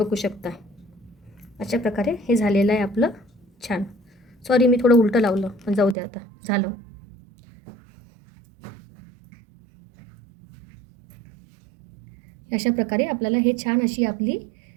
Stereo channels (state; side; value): drops out; left; at 6.0 s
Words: शकता अशा प्रकारे हे झालेलं आहे आपलं छान. सॉरी मी थोडं उलटं लावलं, पण जाऊ द्या आता झालं. अशा प्रकारे आपल्याला हे छान अशी आपली